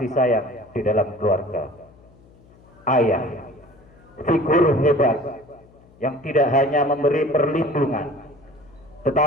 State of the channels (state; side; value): noise; left; hum, 27 dB below the sound